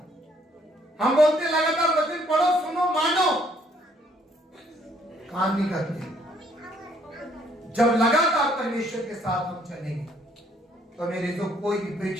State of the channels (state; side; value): normal; both; correlation 0.66